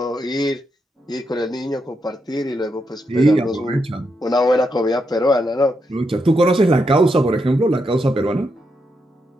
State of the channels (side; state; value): both; normal; correlation 0.82